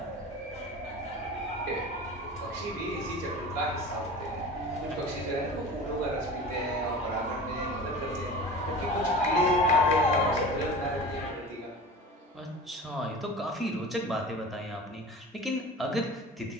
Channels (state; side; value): normal; both; correlation 0.36